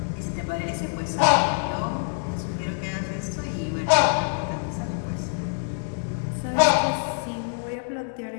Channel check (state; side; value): silent; right; 61 dB below the other